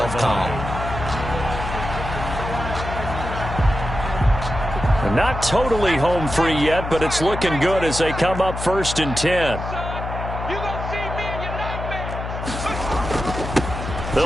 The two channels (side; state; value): left; noise; hum, 6 dB below the sound